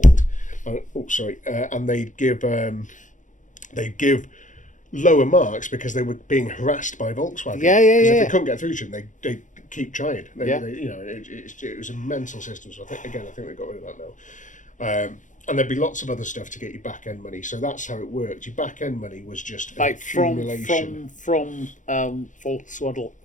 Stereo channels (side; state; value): right; late; 0.37 ms